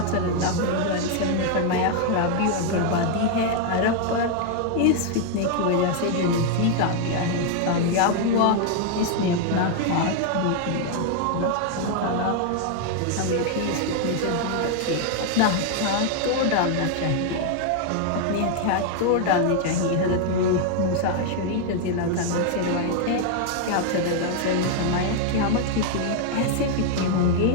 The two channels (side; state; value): both; different; correlation 0.00